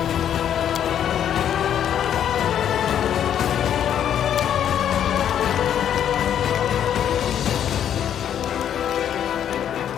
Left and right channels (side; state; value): right; quieter; 9.7 dB